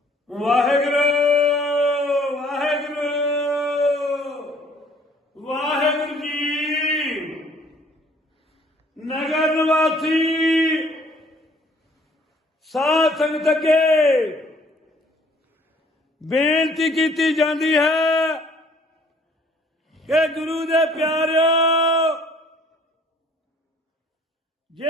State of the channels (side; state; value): both; normal; correlation 0.58